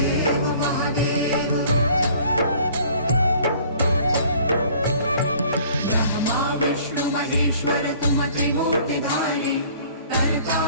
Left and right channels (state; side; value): inverted; both; correlation -0.53